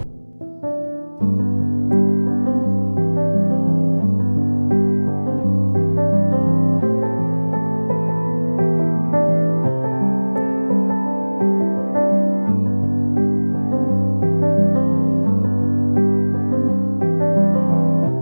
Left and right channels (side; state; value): both; inverted; correlation -1.00